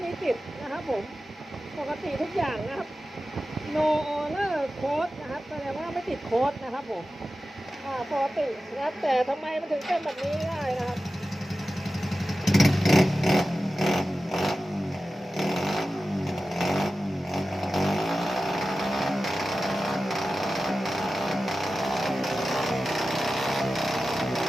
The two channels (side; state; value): both; normal; correlation 0.94